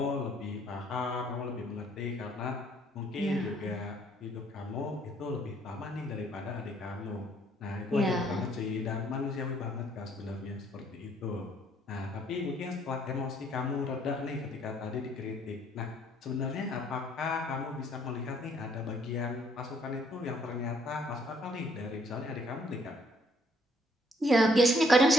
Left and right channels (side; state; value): both; normal; correlation 0.65